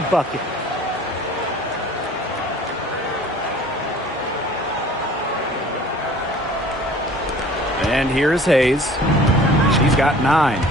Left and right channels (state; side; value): normal; both; correlation 0.48